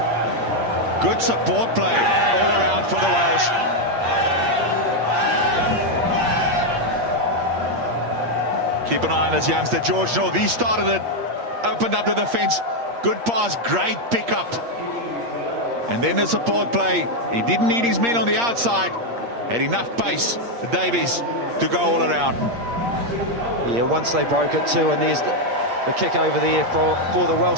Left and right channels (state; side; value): late; left; 8.6 ms